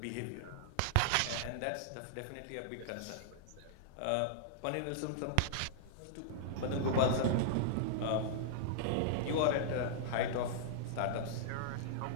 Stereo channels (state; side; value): different; both; correlation -0.01